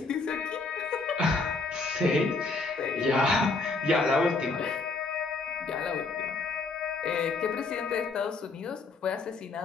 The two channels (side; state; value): right; quieter; 3.8 dB